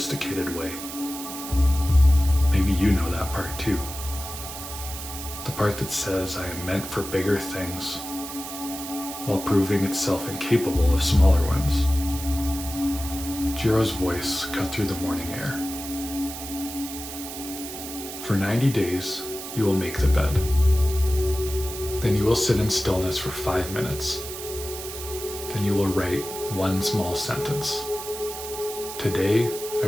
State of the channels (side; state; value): right; noise; hiss, 9 dB below the sound